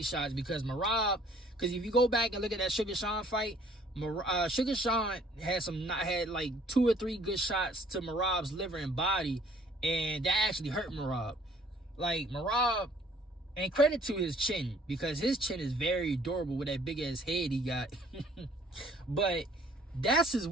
shots because Merab. Because if you go back and look at that Sugar Sean fight, Sugar Sean had like 2 or 3 good shots to Merab's liver and body, and that actually hurt Merab. Like, Merab, and credit to his chin, because his chin is very durable with that big ass head he got. But that's his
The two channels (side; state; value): both; normal; correlation 0.58